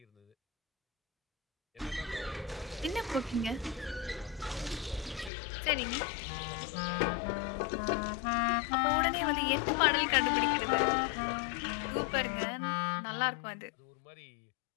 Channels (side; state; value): right; drops out; at 5.3 s